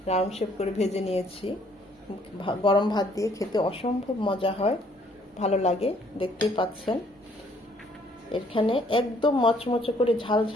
রাউন্ড শেপ করে ভেজে নিয়েছি। গরম ভাত দিয়ে খেতে অসম্ভব মজা হয়, ভালো লাগে, দেখতেই পাচ্ছেন। এখানে একদম মচমচে করে ঝাল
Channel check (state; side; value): normal; both; correlation 0.63